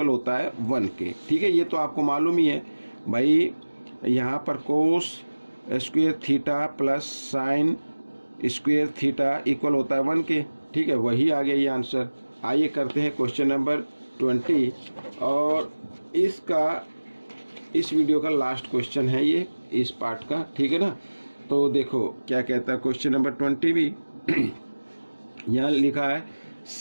होता है 1 के, ठीक है, ये तो आपको मालूम ही है भाई, यहाँ पर cos square theta plus sine square theta equal होता है 1 के, ठीक है, वही आ गया ये आंसर। आइए करते हैं क्वेश्चन नंबर 20, और इस वीडियो का लास्ट क्वेश्चन है ये, इस पार्ट का, ठीक है ना। तो देखो क्या कहता है क्वेश्चन नंबर 20 भी यहाँ लिखा है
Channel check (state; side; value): inverted; both; correlation -1.00